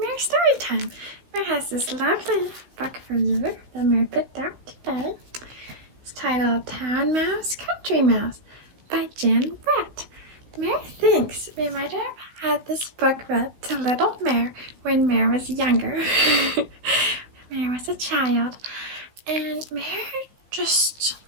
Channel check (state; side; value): late; left; 16 ms